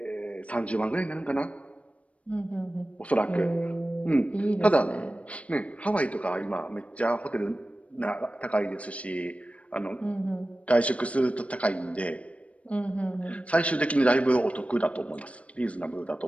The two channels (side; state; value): right; late; 0.064 ms